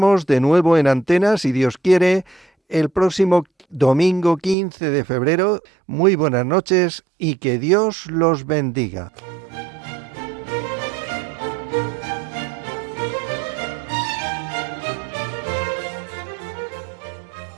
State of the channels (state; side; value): drops out; left; at 4.5 s